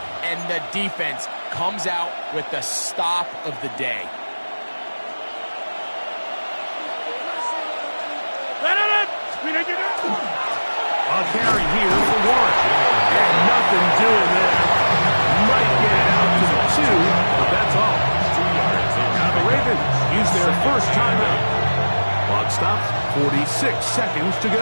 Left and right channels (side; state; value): both; inverted; correlation -1.00